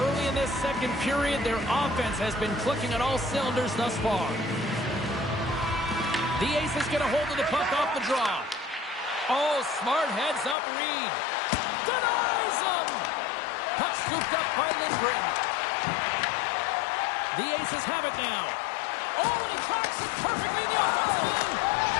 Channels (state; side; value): drops out; right; at 10.6 s